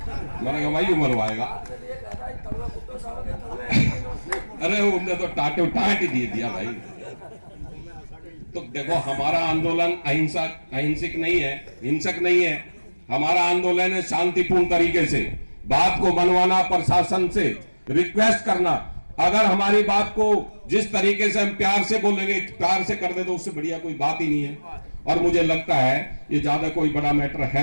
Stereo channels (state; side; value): inverted; both; correlation -1.00